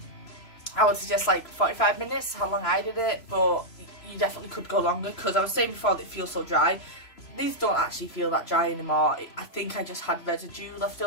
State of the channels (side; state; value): right; late; 3.0 ms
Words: would suggest like 45 minutes, how long I did it, but you definitely could go longer because I was saying before that it feels so dry. These don't actually feel that dry anymore. I think I just had residue left